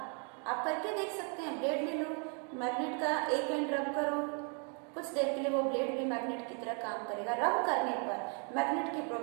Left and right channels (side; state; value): left; quieter; 39.7 dB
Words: आप करके देख सकते हैं। ब्लेड ले लो, मैग्नेट का एक एंड रब करो, कुछ देर के लिए वो ब्लेड भी मैग्नेट की तरह काम करेगा। रब करने पर मैग्नेट की